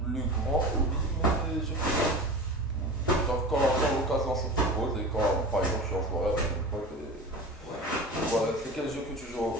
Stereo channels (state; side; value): normal; both; correlation 0.33